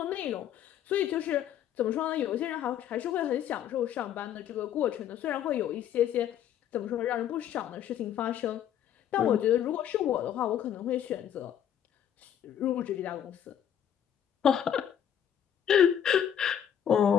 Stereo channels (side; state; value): right; quieter; 9.7 dB